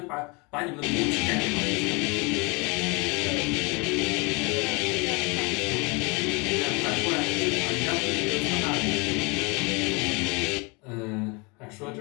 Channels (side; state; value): right; quieter; 29.3 dB